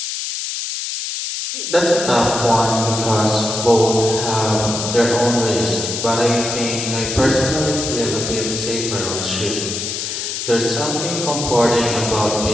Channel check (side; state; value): left; noise; hiss, 4 dB below the sound